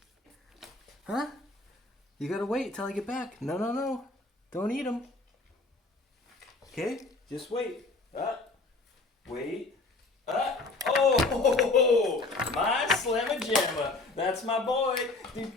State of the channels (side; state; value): right; quieter; 3.4 dB